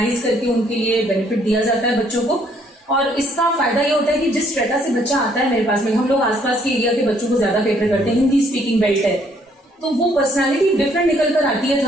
करके उनके लिए बेनिफिट दिया जाता है बच्चों को। और इसका फायदा ये होता है कि जिस स्ट्रेटा से बच्चा आता है मेरे पास में, हम लोग आसपास के एरिया के बच्चों को ज्यादा कैटर करते हैं, हिंदी स्पीकिंग बेल्ट है, तो वो पर्सनालिटी डिफरेंट निकल कर आती है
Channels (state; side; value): normal; both; correlation 0.66